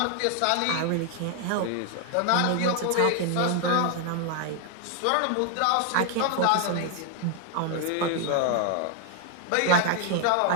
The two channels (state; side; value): different; both; correlation 0.00